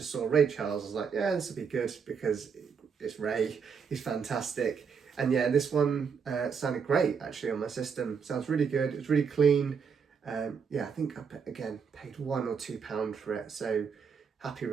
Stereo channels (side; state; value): left; quieter; 6.2 dB